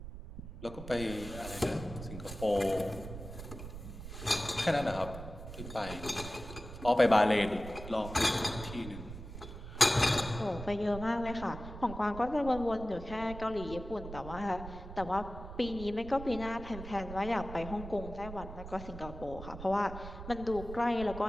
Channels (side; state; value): right; noise; rumble, 11 dB below the sound